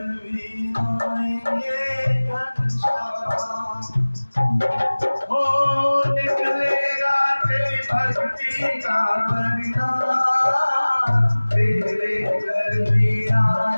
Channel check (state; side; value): inverted; both; correlation -1.00